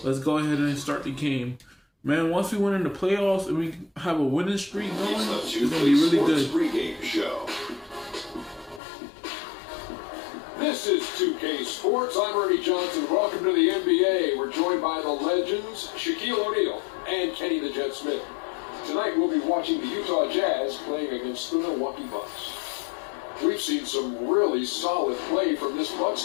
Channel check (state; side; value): drops out; right; at 8.8 s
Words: let's go ahead and start the game. Man, once we win in the playoffs and we have a winning streak going, it's gonna be really good. Pregame show. This is 2K Sports. I'm Ernie Johnson. Welcome to the NBA. We're joined by the legends Shaquille O'Neal and Kenny the Jet Smith. Tonight we'll be watching the Utah Jazz playing against the Milwaukee Bucks. We've seen some really solid play from this Bucks